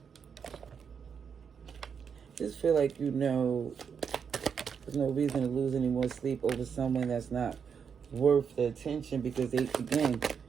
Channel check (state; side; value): quieter; left; 6.8 dB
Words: Just feel like, you know, there's no reason to lose any more sleep over someone that's not worth the attention, because they, again,